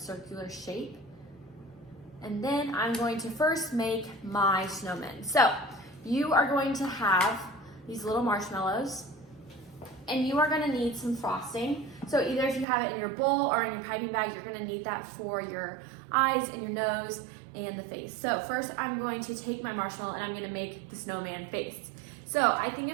shape. And then I'm going to first make my snowmen. So you are going to have these little marshmallows, and you are gonna need some frosting. So either if you have it in your bowl or in your piping bag, you're gonna need that for your eyes and your nose and the face. So first I'm going to take my marshmallow and I'm gonna make the snowman face. So I think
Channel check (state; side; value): drops out; left; at 12.7 s